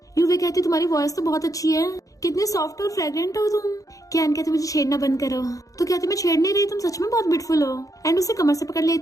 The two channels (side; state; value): right; late; 0.17 ms